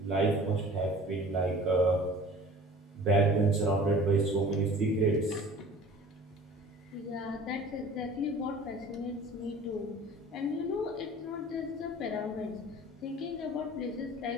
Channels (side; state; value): both; normal; correlation 0.45